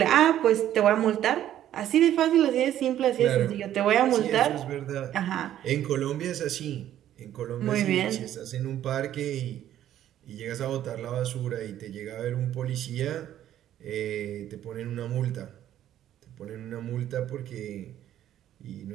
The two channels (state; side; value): quieter; left; 11.8 dB